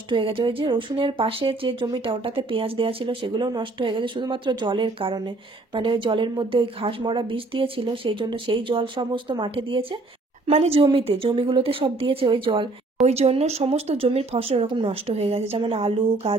হয়ে গেছে। ওই যে রসুনের পাশে যে জমিটা, ওটাতে পেঁয়াজ দেওয়া ছিল, সেগুলোও নষ্ট হয়ে গেছে শুধুমাত্র জলের কারণে, মানে ওই জলের মধ্যে ওই ঘাস মরা বিষ দিয়েছিল, সেই জন্য সেই জল সমস্ত মাঠে দিয়েছে, মানে জমিগুলোতে সব দিয়েছে ওই জল, ওই জন্য সমস্ত জমির ফসল এরকম নষ্ট হয়ে গেছে, যেমন আলু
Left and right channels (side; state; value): left; quieter; 3.2 dB